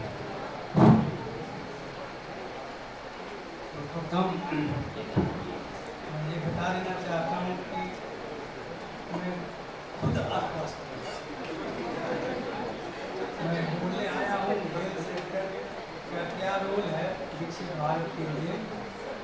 मैं ये बता देना चाहता हूँ कि मैं खुद आश्वस्त मैं बोलने आया हूँ हेल्थ सेक्टर का क्या रोल है विकसित भारत के लिए,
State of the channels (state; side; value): identical; both; correlation 1.00